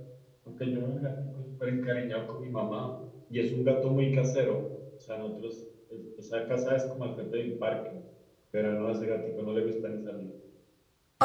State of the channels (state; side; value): identical; both; correlation 1.00